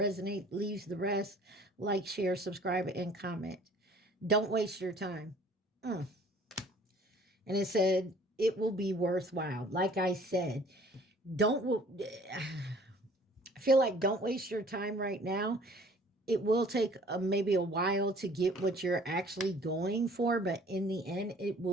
leaves the rest. Like, share, subscribe, and comment. Don't waste your time. And it said, it will be worthwhile. Like I said, I feel like don't waste your time right now. It will take maybe a while to get what you're actually going for, but in the end, it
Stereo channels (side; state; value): both; normal; correlation 0.53